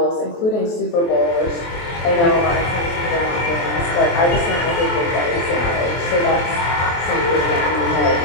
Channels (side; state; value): right; late; 23 ms